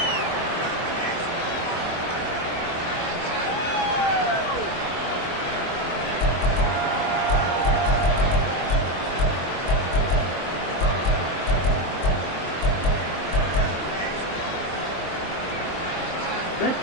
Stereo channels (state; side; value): late; right; 23 ms